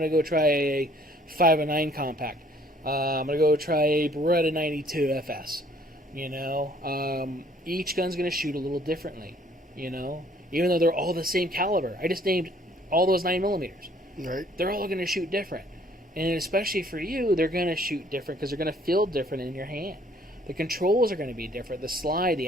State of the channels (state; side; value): normal; both; correlation 0.60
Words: go try a 509 compact. I'm gonna go try a Beretta 92 FS. You know, each gun's gonna shoot a little differently. You know, even though they're all the same caliber. I just named all those 9mm. Right. They're all going to shoot different. And especially for you, they're going to shoot different because they're going to feel different in your hand. The controls are going to be different. The slide,